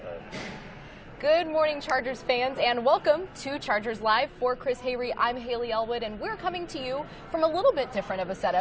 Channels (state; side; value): identical; both; correlation 1.00